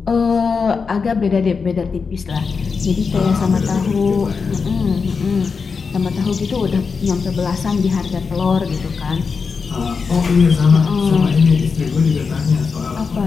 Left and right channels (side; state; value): right; quieter; 5.2 dB